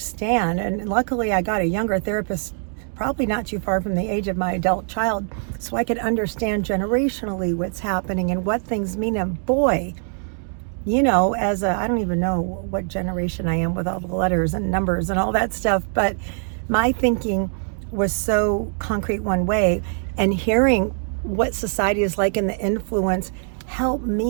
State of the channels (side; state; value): left; silent; 60 dB below the other